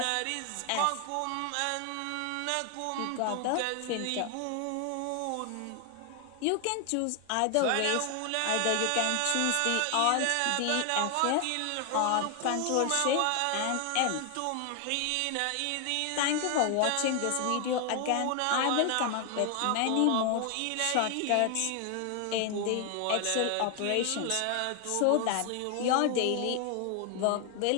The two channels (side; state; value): both; different; correlation 0.00